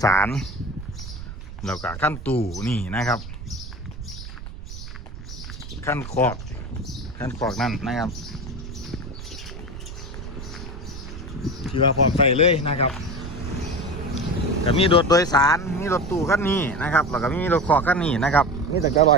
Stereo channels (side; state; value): right; noise; rumble, 11 dB below the sound